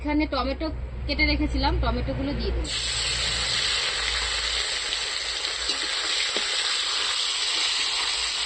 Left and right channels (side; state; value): both; identical; correlation 1.00